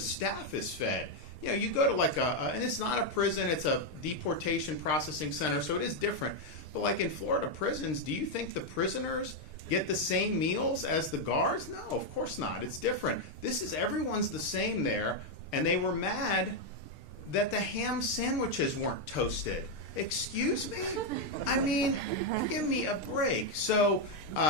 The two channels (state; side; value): late; right; 6.7 ms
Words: is fed. You go to and it's not a prison; it's a deportation processing center, so it is different. But in Florida prisons, do you think the prisoners get the same meals as the guards? No, of course not. It's different. Everyone's the same there, and they were mad that the ham sandwiches weren't toasted. Excuse me? I mean, give me a break. So